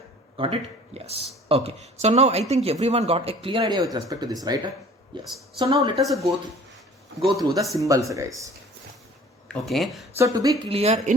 Got it? Yes. Okay. So now I think everyone got a clear idea with respect to this, right? Yes. So now let us go through the symbols, guys. Okay, so to be clear,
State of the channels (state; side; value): normal; both; correlation 0.49